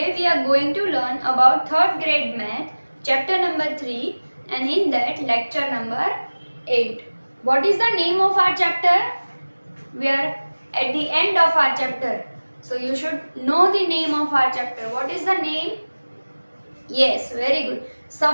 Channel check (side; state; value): both; inverted; correlation -1.00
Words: we are going to learn about 3rd grade math, chapter number 3 and in that lecture number 8. What is the name of our chapter? We are at the end of our chapter. So you should know the name of our chapter. What is the name? Yes, very good.